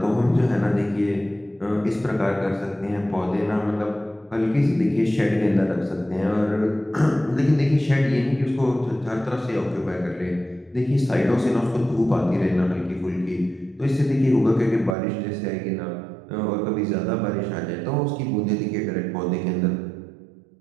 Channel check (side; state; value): left; drops out; at 15.0 s